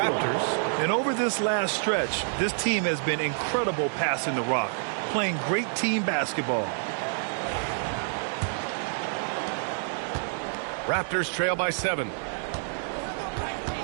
And over this last stretch, this team has been incredible passing the rock, playing great team basketball. Raptors trail by 7.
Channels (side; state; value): left; silent; digital silence